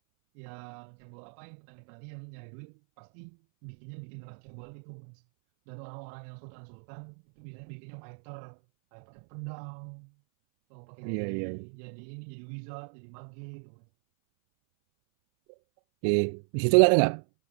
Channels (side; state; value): left; silent; 56 dB below the other